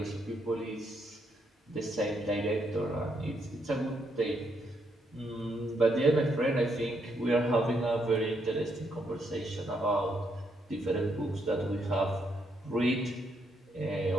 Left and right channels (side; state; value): both; normal; correlation 0.76